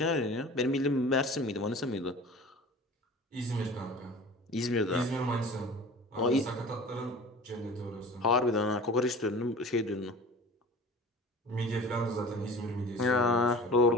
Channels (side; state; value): both; normal; correlation 0.39